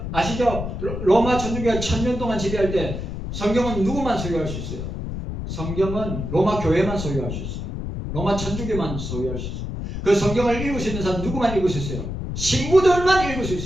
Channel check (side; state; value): left; noise; rumble, 5 dB below the sound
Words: 아시죠? 로마 천주교가 1000년 동안 지배할 때 성경은 누구만 소유할 수 있어요? 성경은 로마 교회만 소유할 수 있어요. 로마 천주교만 소유할 수 있어요. 그 성경을 읽을 수 있는 사람 누구만 읽을 수 있어요? 신부들만 읽을 수